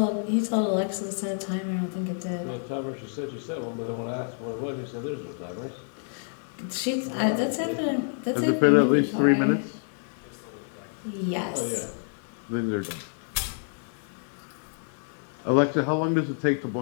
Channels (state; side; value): silent; right; 59 dB below the other